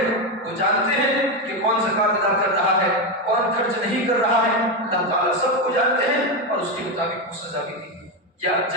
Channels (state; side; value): normal; both; correlation 0.10